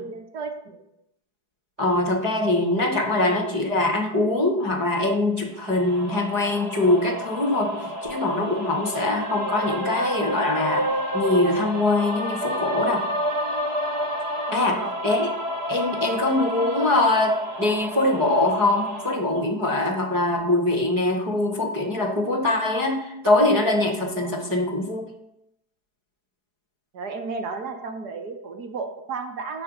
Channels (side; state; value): left; late; 4.8 ms